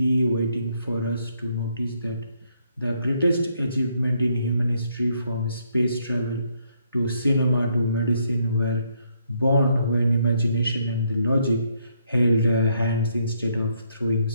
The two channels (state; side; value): inverted; both; correlation -0.72